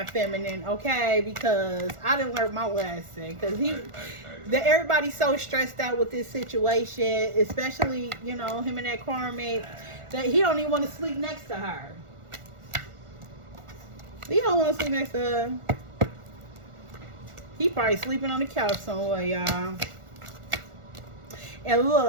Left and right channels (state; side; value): late; left; 1.4 ms